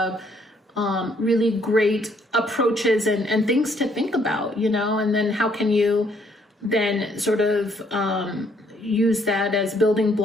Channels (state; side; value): normal; both; correlation 0.67